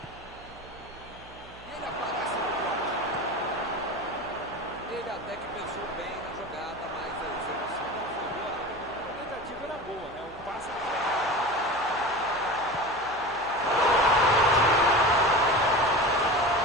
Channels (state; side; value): noise; right; hum, 21 dB below the sound